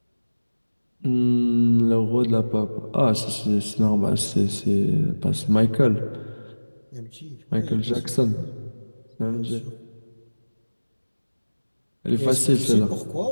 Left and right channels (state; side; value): inverted; both; correlation -1.00